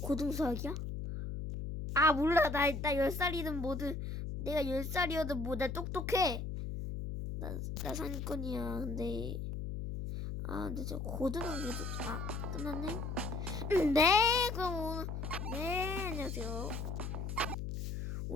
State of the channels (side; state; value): left; noise; hum, 4 dB below the sound